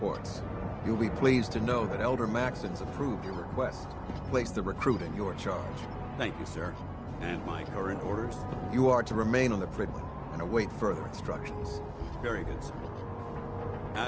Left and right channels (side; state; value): both; identical; correlation 1.00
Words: You'll be pleased to know that Elder Maxson's approved your request. Place the recruit in your charge. Thank you, sir. And my current orders? You are to remain on the Prydwen and await further instructions. Very good, sir.